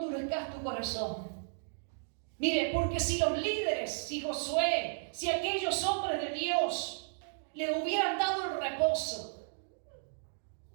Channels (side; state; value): left; silent; digital silence